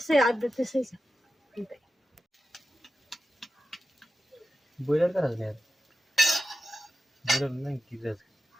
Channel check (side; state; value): both; normal; correlation 0.91